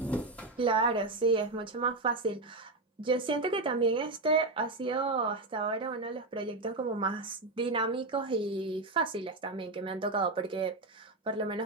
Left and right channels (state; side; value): quieter; left; 3.1 dB